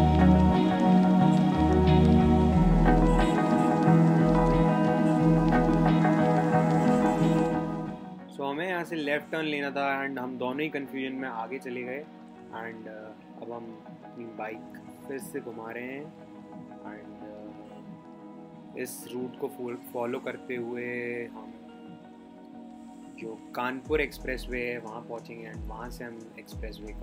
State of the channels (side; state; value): both; identical; correlation 1.00